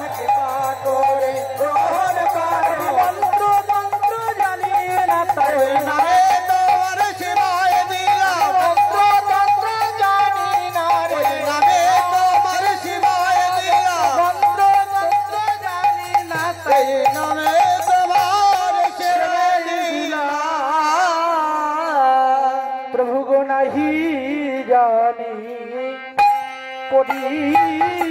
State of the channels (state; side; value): identical; both; correlation 1.00